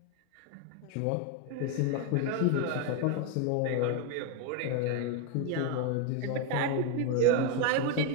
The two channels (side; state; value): both; different; correlation 0.02